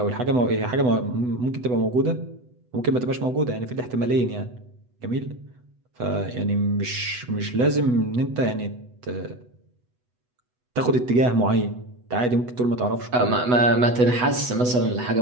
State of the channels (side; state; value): left; late; 8.1 ms